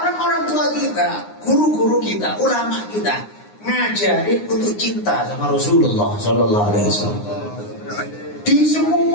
orang-orang tua kita, guru-guru kita, ulama kita ngajarin untuk cinta sama Rasulullah Sallallahu Alaihi Wasallam. Di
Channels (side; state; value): right; late; 9.7 ms